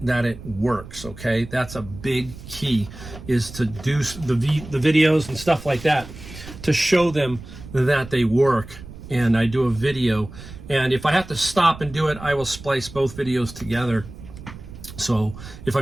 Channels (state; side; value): noise; right; rumble, 15 dB below the sound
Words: that it works, okay? That's a big key, is to do the videos and stuff like that to show them that they work. And I do a video, and if I have to stop and do it, I will splice both videos together. So if